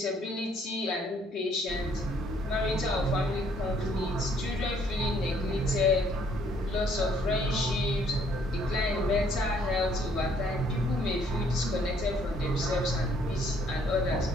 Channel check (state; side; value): normal; both; correlation 0.64